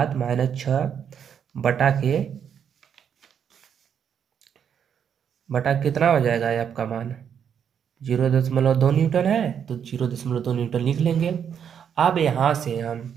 बटा के कितना हो जाएगा ये आपका मान 0.2 न्यूटन है, तो 0.2 न्यूटन लिख लेंगे। अब यहाँ से हम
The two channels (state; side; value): quieter; left; 8.0 dB